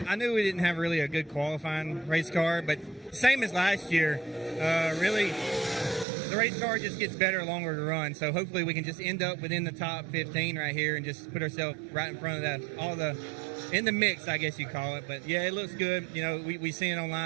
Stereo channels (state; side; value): drops out; left; at 6.1 s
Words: knew we didn't have really a good qualifying race car, but same as last year. Really, the race car just gets better, longer to run. So hopefully we can just end up within the top 15 right here and just put ourselves right in front of in the mix, I guess you call it. But yeah, it looks good. You know, we seen it